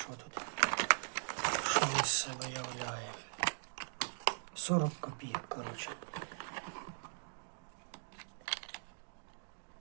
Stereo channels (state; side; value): silent; left; digital silence